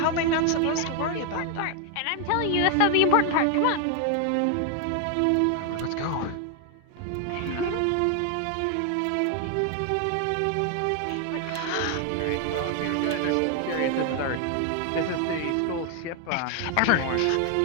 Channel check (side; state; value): both; different; correlation 0.00